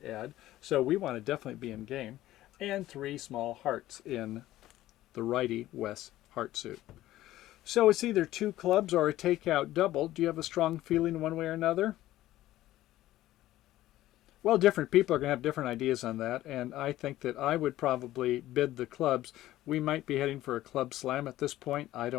add. So we want to definitely be in game. And 3 small hearts in the righty west heart suit. So it's either 2 clubs or a takeout double. Do you have a strong feeling one way or another? Well, different people are going to have different ideas on that, and I think that I would probably bid the clubs. We might be heading for a club slam at this point. I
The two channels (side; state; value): right; quieter; 15.0 dB